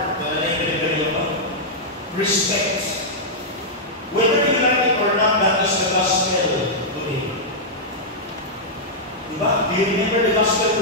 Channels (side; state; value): both; normal; correlation -0.08